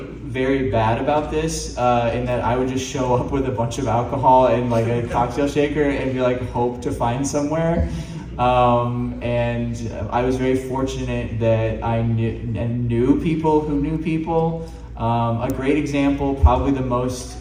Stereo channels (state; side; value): identical; both; correlation 1.00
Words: bad about this, in that I would just show up with a bunch of alcohol and like a cocktail shaker and be like, hope to find somewhere. And I was very fortunate that I knew people who knew people. A great example, probably